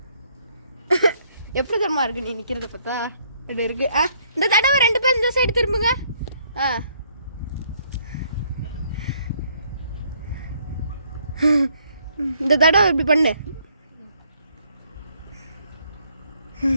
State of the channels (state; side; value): inverted; both; correlation -0.67